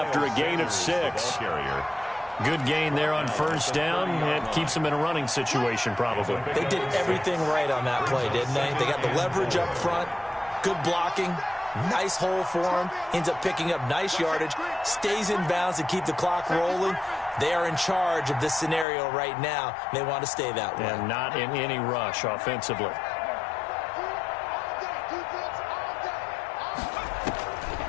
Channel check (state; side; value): drops out; right; at 18.9 s